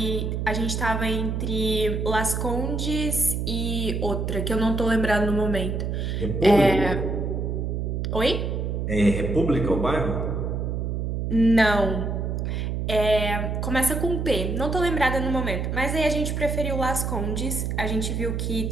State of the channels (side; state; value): right; noise; hum, 1 dB below the sound